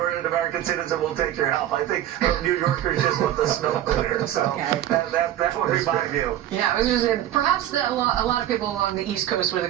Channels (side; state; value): left; quieter; 12.2 dB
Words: an American citizen, we'll take your help. I think New Yorkers just want the snow cleared. So that would be my view. Yeah, I was just saying, perhaps a lot of people along the East Coast would